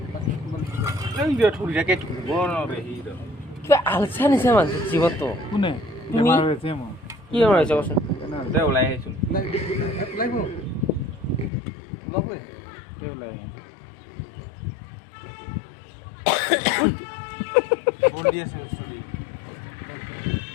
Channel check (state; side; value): drops out; right; at 11.5 s